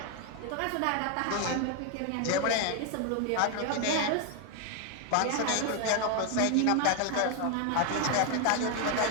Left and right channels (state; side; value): different; both; correlation 0.01